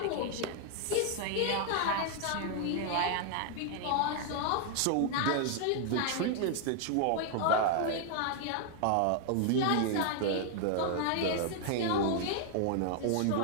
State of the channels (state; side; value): different; both; correlation 0.00